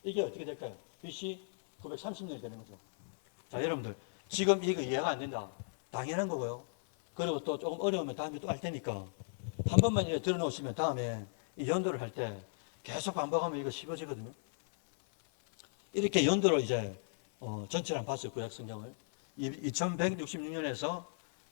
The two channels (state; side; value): silent; right; 54 dB below the other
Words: 이게 어떻게 될까요? BC 930년이 되는 거죠. 자, 여러분들 지금 이거 이해가 안 된다. 당연한 거고요. 그리고 또 조금 어려우면 다음에 또 할 테니까 한 번만 이렇게 들어놓으시면 다음에 이 연도를 할 때 계속 반복하면 이거 쉬워지거든요. 이렇게 연도를 이제 전체를 한번 봤어요. 구약 성경을 2166년에서